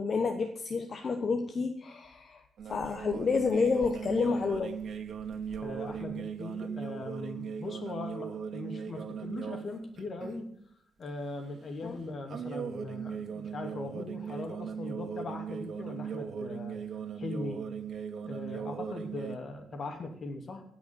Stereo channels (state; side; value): normal; both; correlation 0.79